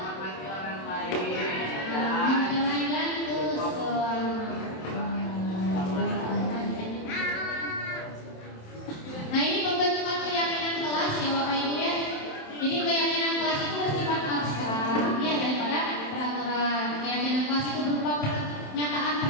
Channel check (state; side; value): late; right; 27 ms